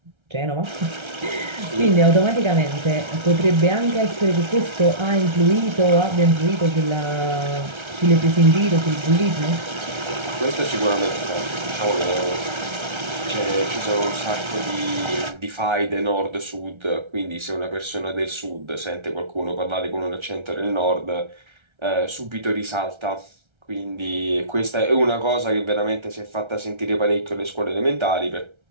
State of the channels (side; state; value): left; late; 1.3 ms